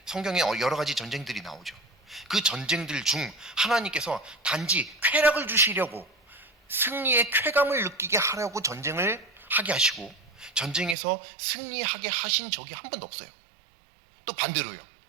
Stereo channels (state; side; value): drops out; left; at 11.0 s